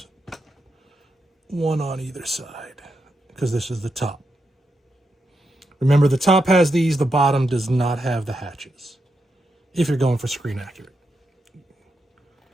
one on either side, because this is the top. Remember, the top has these, the bottom does not have the hatches, if you're going for screen accurate.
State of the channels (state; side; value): normal; both; correlation 0.85